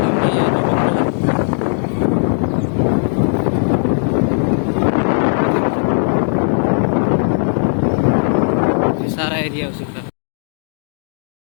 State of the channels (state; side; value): silent; right; digital silence